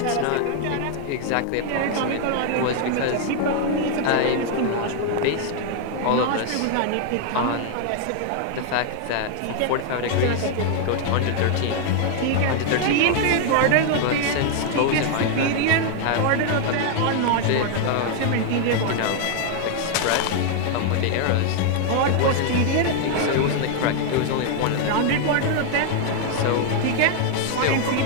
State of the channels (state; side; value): different; both; correlation 0.00